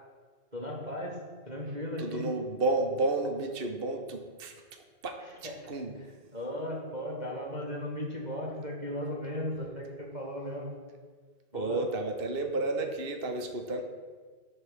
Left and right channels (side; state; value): left; late; 2.6 ms